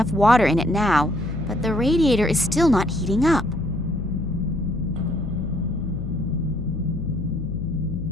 water in it now, but the radiator is still not heating up.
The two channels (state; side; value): noise; left; hum, 7 dB below the sound